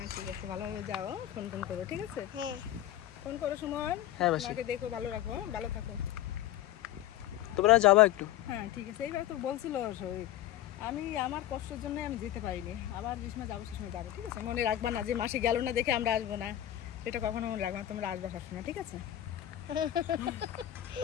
ঠিক আছে, ভালোভাবে যাও, ফোন করো, ঠিক আছে? ফোন করো সুমন। হ্যাঁ মাসি, আমাকে দেখো, ভালো রাখো, ভালো থাকো। তোমরা যাবা একটু? হ্যাঁ ঠিক আছে। এইবার তো বলছিল শরীর, আমি আমার কষ্টের জন্য আমি যেতে পারিনি, আবার যে সময় যাবো সে সময় যাবো, ঠিক আছে? মনে রাখবা না যে মাসি গেল না দেখে আমরা আসবো না, এটা কখনো মনে রাখবা না, তোমরা আসবা সবসময়, ঠিক আছে?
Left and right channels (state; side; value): quieter; right; 12.8 dB